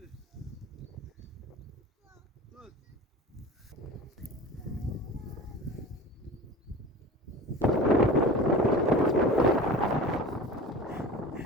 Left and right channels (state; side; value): normal; both; correlation 0.36